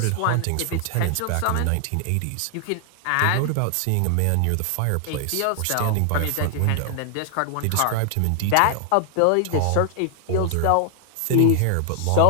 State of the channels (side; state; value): both; different; correlation 0.00